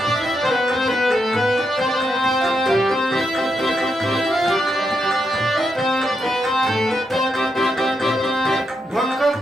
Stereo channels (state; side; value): normal; both; correlation 0.83